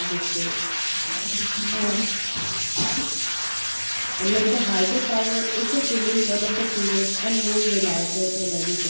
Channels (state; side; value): inverted; both; correlation -1.00